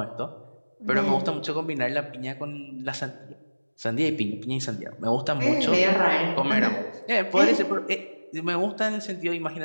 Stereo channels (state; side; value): inverted; both; correlation -1.00